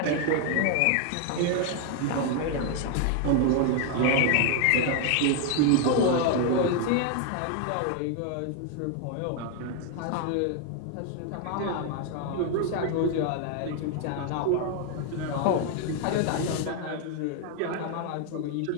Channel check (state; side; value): different; both; correlation 0.00